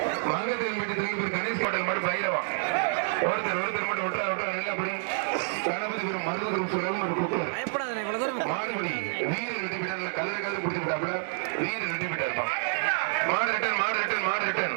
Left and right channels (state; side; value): silent; left; digital silence